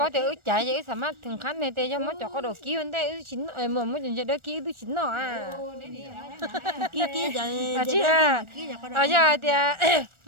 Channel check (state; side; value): late; left; 1.4 ms